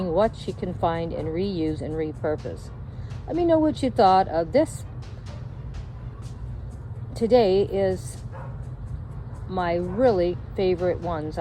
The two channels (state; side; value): identical; both; correlation 1.00